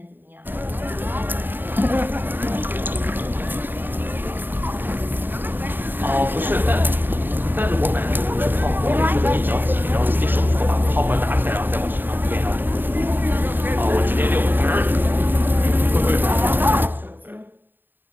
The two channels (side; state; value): left; late; 0.093 ms